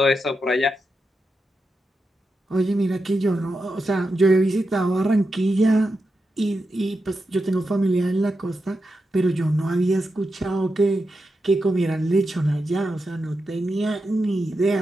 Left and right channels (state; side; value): normal; both; correlation 0.88